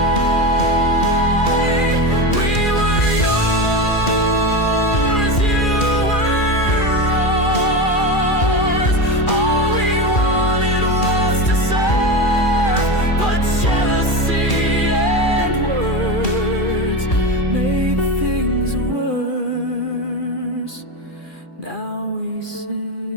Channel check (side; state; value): right; late; 2.4 ms